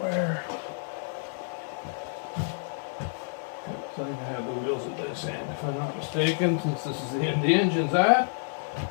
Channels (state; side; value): silent; right; 59 dB below the other